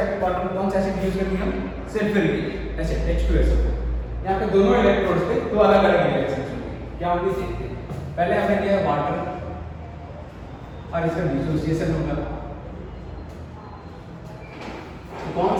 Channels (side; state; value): both; identical; correlation 1.00